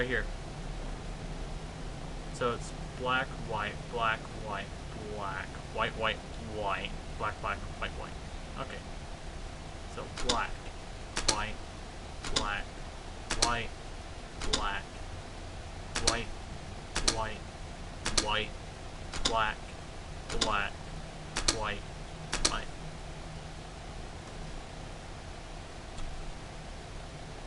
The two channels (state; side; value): identical; both; correlation 1.00